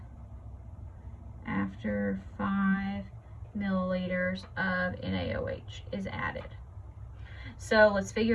after 5 milliliters of NaOH is added. So let's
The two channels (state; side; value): identical; both; correlation 1.00